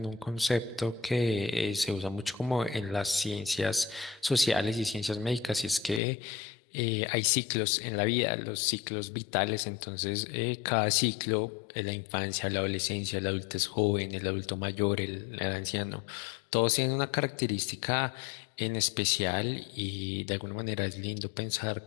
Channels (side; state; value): right; drops out; at 6.0 s